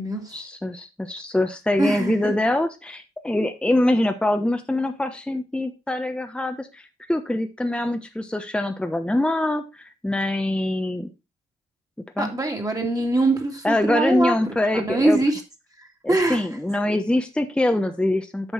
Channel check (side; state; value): both; normal; correlation 0.89